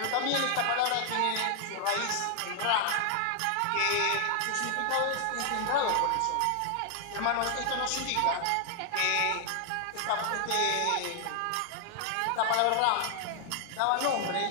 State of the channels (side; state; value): both; different; correlation 0.00